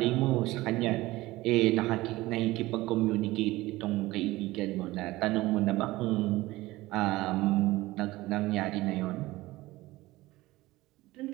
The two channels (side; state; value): left; quieter; 18.7 dB